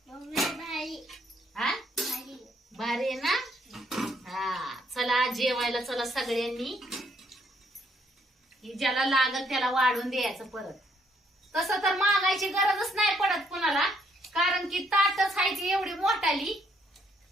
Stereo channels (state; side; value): normal; both; correlation 0.70